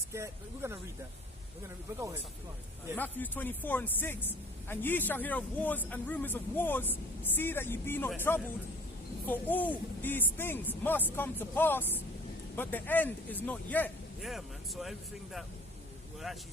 We're going to read that. But go ahead. Yeah. Matthew 24:6. And ye shall hear of wars and rumors of wars. See that ye be not troubled. For all these things must come to pass, but the end is not yet. Yeah, man. So everything that we're actually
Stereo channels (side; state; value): both; normal; correlation 0.50